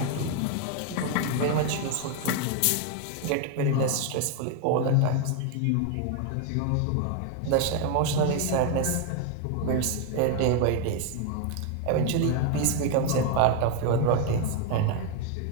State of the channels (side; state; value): both; different; correlation 0.01